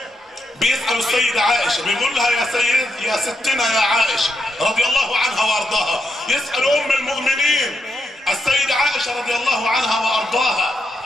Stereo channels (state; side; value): normal; both; correlation 0.82